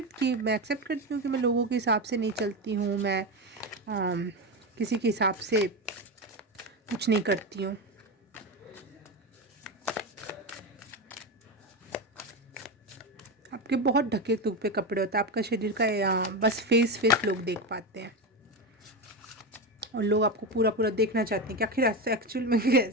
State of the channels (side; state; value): both; normal; correlation 0.16